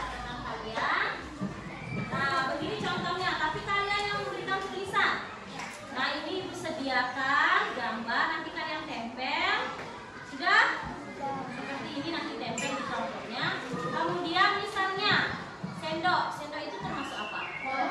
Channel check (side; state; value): both; identical; correlation 1.00